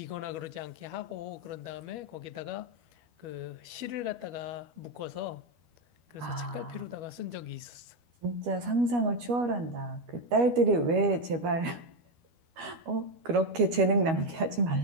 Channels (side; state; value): left; late; 12 ms